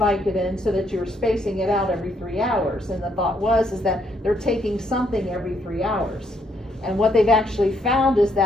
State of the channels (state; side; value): normal; both; correlation 0.73